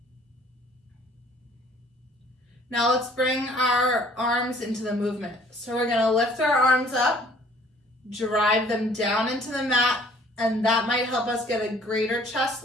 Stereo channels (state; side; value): normal; both; correlation 0.56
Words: Now let's bring our arms into the movement. So we're gonna lift our arms up, drive them down into the mat, and that might help us get a greater